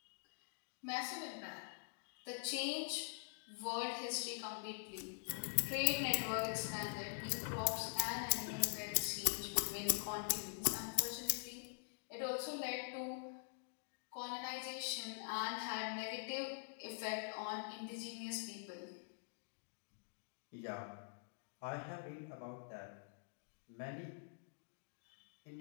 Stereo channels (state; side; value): silent; right; digital silence